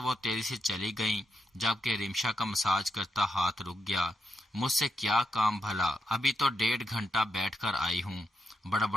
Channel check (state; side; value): normal; both; correlation 0.83